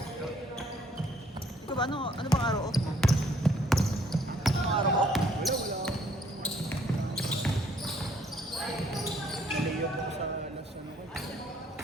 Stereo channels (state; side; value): normal; both; correlation 0.63